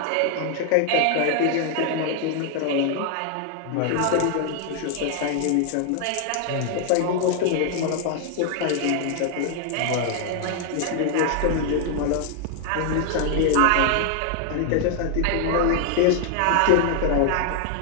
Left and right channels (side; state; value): both; different; correlation 0.00